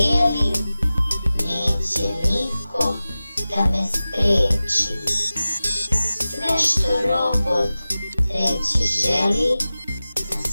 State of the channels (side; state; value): both; inverted; correlation -0.96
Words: neće niko da me spreči. Sve što robot reći želi, na